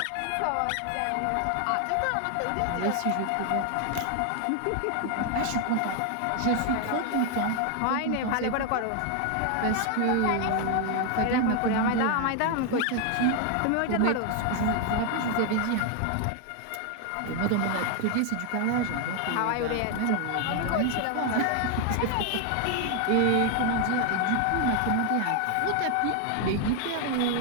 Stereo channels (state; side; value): different; both; correlation 0.00